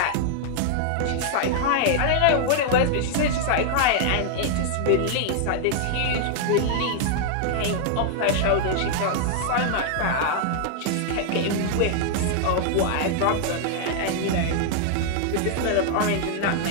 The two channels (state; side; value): different; both; correlation -0.01